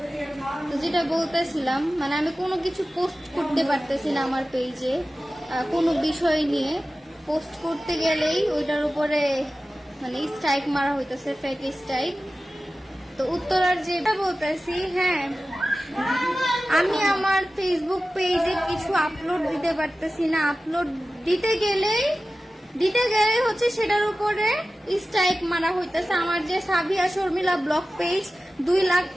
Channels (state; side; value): normal; both; correlation 0.95